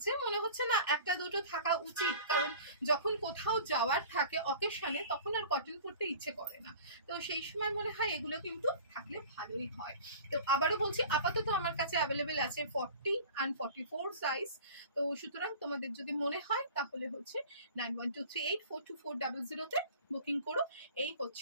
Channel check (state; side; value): inverted; both; correlation -0.42